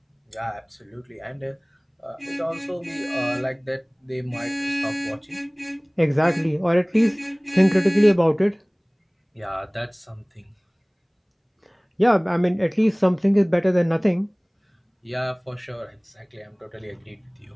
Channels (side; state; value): both; identical; correlation 1.00